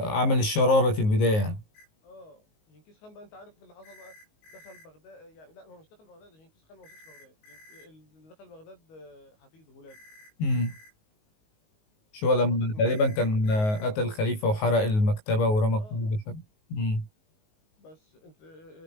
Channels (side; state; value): right; late; 19 ms